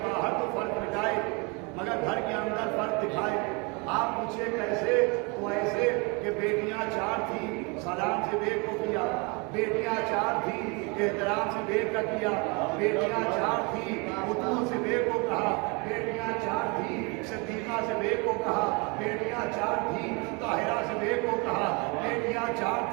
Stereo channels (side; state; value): left; quieter; 30.5 dB